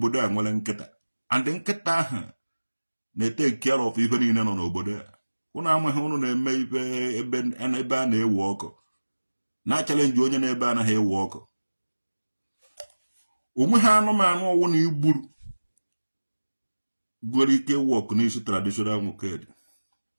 a nwere nkịta, and nkịta ahụ na-take care of ife niile nọ n'obodo a. Ụnụ amaghị ụnụ na-eme ife ebe a na-ewe ọkụ na-achalenji onye na-ebe anaghị ewe ọkụ. Onwe ha anụmanụ ọwụ na igburu gwere ike wọk n'isi traditional nwoke dị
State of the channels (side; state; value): both; inverted; correlation -1.00